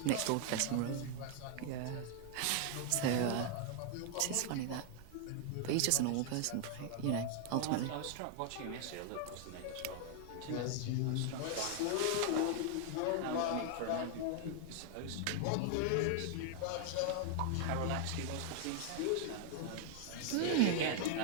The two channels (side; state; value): both; different; correlation 0.00